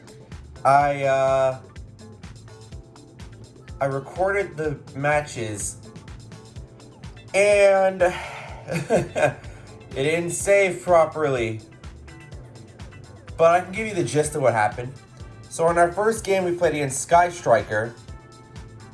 I recorded the matches and it didn't save properly. But I can give you the gist of what happened. So in our first game we played against Sky Striker.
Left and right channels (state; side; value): identical; both; correlation 1.00